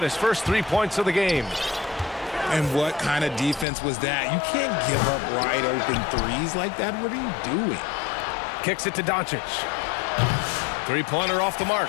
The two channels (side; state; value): right; drops out; at 3.7 s